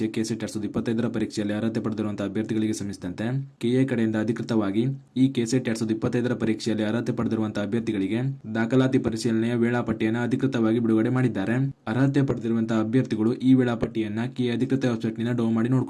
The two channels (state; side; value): identical; both; correlation 1.00